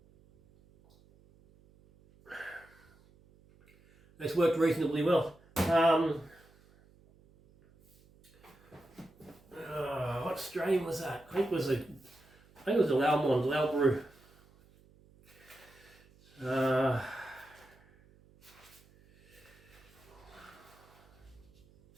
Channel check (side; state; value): right; noise; hum, 28 dB below the sound